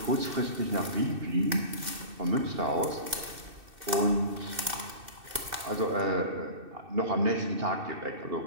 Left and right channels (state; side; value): late; left; 2.6 ms